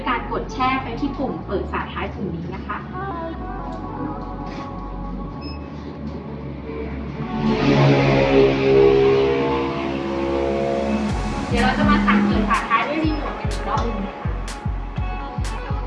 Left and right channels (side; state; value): both; identical; correlation 1.00